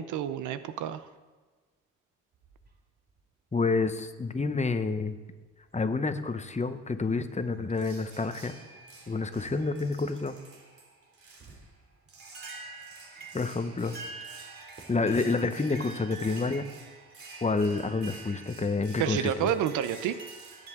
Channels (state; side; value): normal; both; correlation 0.51